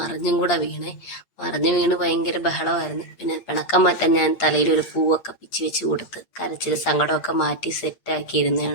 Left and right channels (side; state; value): right; late; 8.6 ms